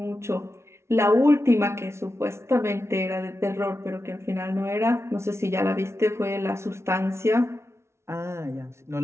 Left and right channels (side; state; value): left; late; 0.13 ms